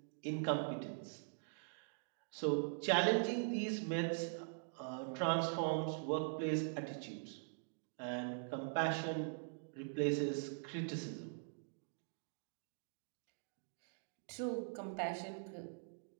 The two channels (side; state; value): left; silent; digital silence